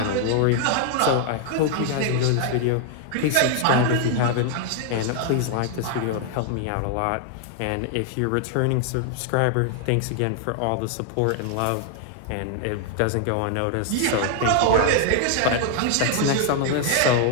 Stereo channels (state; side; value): different; both; correlation 0.00